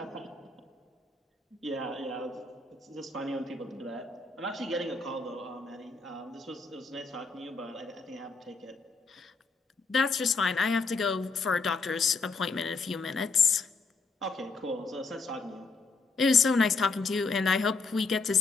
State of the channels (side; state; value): right; quieter; 4.1 dB